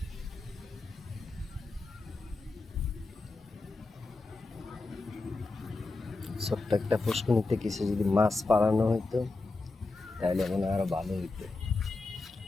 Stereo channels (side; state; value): right; quieter; 3.4 dB